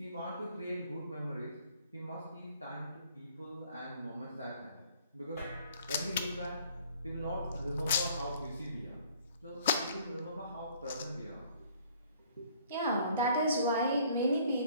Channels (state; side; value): inverted; both; correlation -0.57